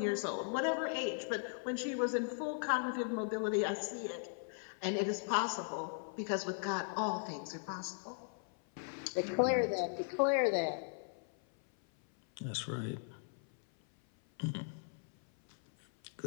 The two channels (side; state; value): right; silent; 52 dB below the other